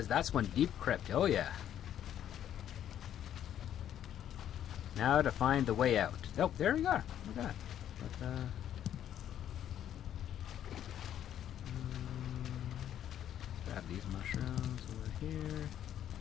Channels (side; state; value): right; quieter; 10.6 dB